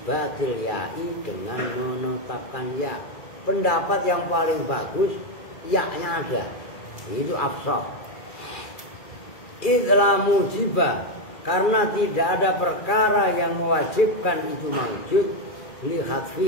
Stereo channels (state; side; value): late; right; 2.3 ms